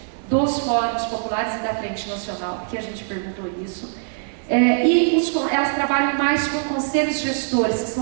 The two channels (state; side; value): silent; left; digital silence